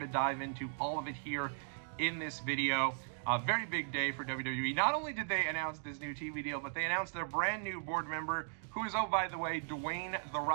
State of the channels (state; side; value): silent; left; digital silence